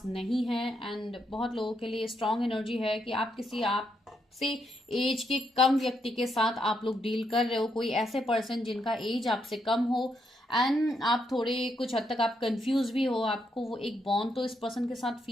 नहीं है। एंड बहुत लोगों के लिए स्ट्रांग एनर्जी है कि आप किसी आपसे एज के कम व्यक्ति के साथ आप लोग डील कर रहे हो, कोई ऐसे पर्सन जिनका एज आपसे कम हो एंड आप थोड़े कुछ हद तक आप कंफ्यूज भी हो। आपको वो एक बॉन्ड तो इस पर्सन के साथ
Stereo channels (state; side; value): normal; both; correlation 0.78